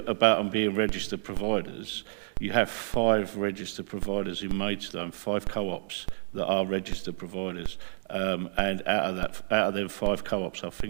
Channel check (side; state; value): left; silent; 58 dB below the other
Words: about them being registered providers. You have 5 registered providers in Maidstone, 5 co-ops that are registered providers, and out of them 5 co-ops, I